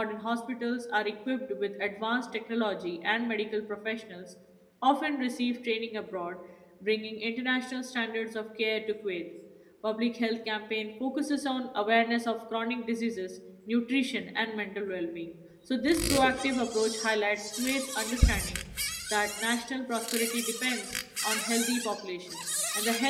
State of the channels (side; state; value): both; identical; correlation 1.00